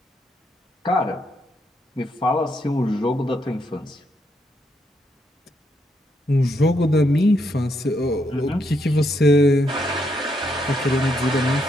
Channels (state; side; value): normal; both; correlation 0.77